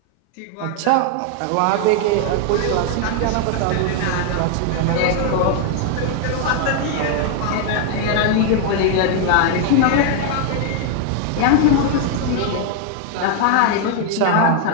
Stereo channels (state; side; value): different; both; correlation 0.00